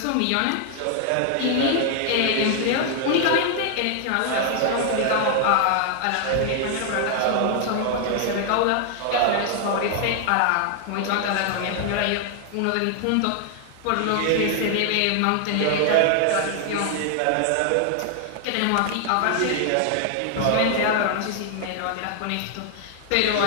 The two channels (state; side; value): different; both; correlation 0.00